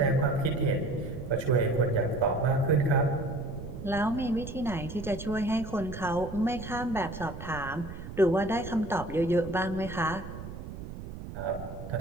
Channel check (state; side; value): noise; right; rumble, 10 dB below the sound